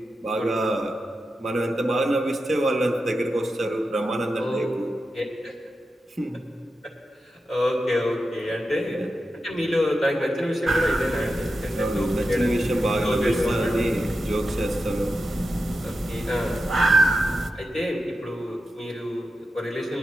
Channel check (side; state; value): both; normal; correlation 0.90